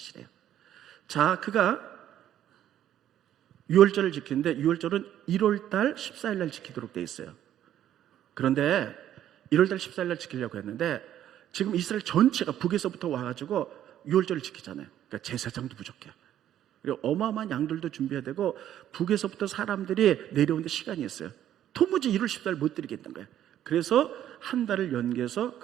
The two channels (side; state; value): left; quieter; 11.3 dB